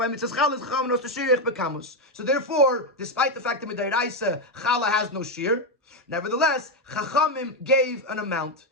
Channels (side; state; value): both; normal; correlation 0.06